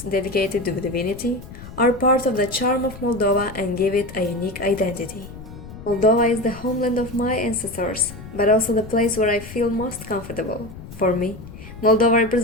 dedicated to divinity are part of the charm of Moldova and give it a unique identity. Moldova is the homeland of my ancestors, but also the place where I feel most comfortable. For me, Moldova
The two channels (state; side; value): noise; left; rumble, 14 dB below the sound